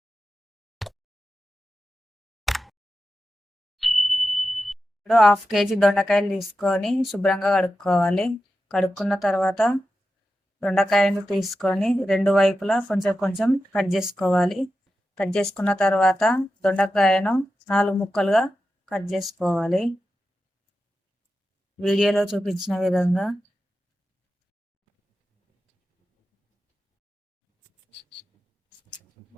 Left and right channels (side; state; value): both; normal; correlation 0.91